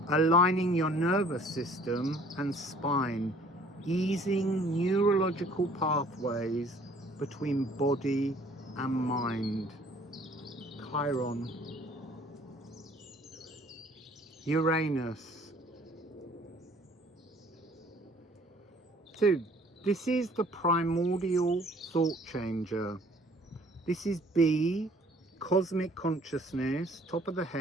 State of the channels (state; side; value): normal; both; correlation 0.56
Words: aligning your nervous system and spine, easing neurological pathways between body and mind. Chiron. Uranus. So this is the primordial thought changer. This is B, cosmic consciousness, top of the